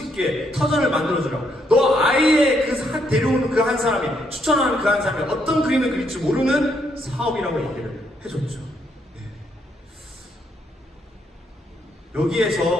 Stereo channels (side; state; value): both; normal; correlation 0.74